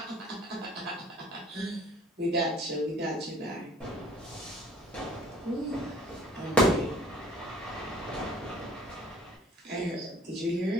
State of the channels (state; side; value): normal; both; correlation 0.53